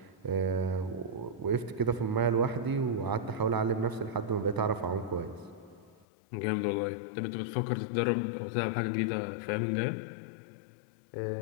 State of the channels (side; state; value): right; drops out; at 6.1 s